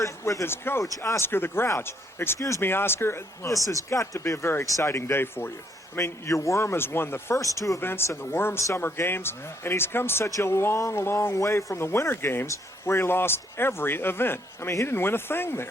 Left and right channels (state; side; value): normal; both; correlation 0.69